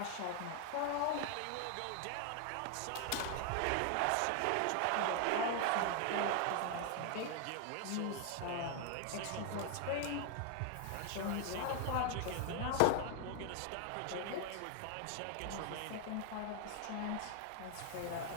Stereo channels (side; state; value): both; different; correlation 0.00